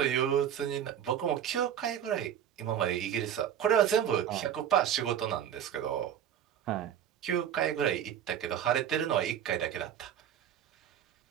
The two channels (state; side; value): quieter; left; 9.8 dB